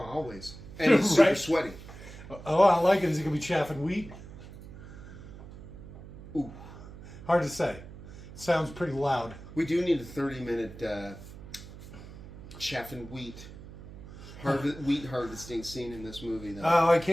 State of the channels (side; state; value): right; noise; hum, 15 dB below the sound